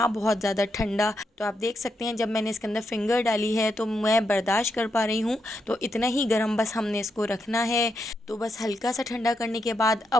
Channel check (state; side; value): normal; both; correlation 0.82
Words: बहुत ज़्यादा ठंडा। तो आप देख सकते हैं जब मैंने इसके अंदर फिंगर डाली है तो मैं बर्दाश्त कर पा रही हूँ। तो इतना ही गर्म बस हमने इसको रखना है। तो बस हल्का सा ठंडा करने के बाद